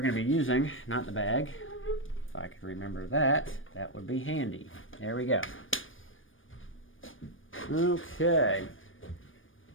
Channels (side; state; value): right; late; 0.58 ms